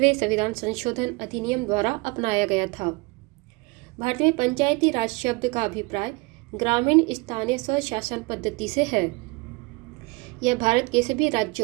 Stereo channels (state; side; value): quieter; left; 26.3 dB